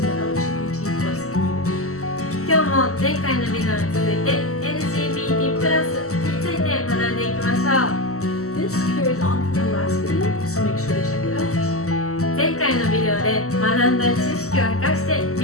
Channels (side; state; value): right; late; 0.64 ms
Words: the LGBT plus community. 今日も前回のビデオに続いて LGBT プラスについて学んでいきましょう。 This carries on from the last video, so make sure to check it out. 前回のビデオで学んだ知識を生かして